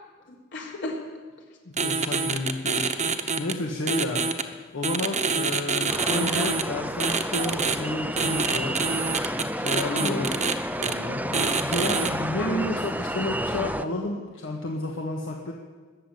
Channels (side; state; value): both; normal; correlation 0.36